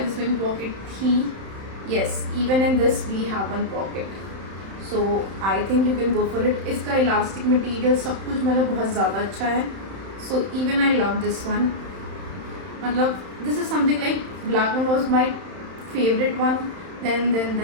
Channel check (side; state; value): left; late; 31 ms